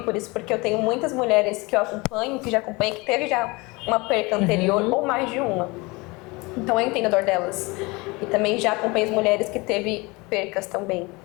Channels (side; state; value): right; quieter; 25.0 dB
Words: por isso, porque eu tenho muitas mulheres que eu acompanho, que já acompanham, que teve já uma perca anterior ou mais de uma. Então eu entendo a dor delas. E também já acompanho as mulheres que teve percas também,